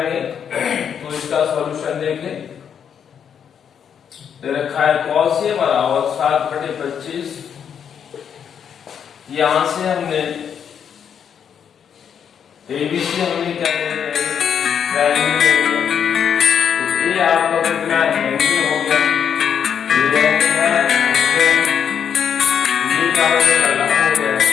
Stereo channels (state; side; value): quieter; right; 8.0 dB